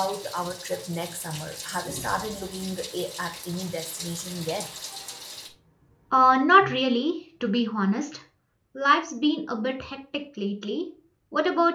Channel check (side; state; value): both; identical; correlation 1.00